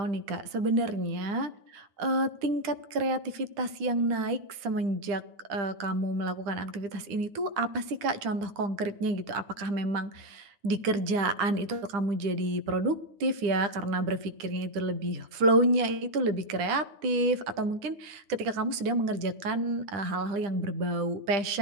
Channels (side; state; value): left; late; 9.9 ms